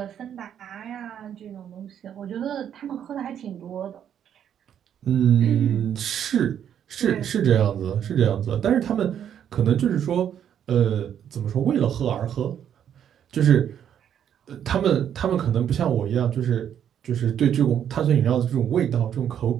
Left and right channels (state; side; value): quieter; left; 9.3 dB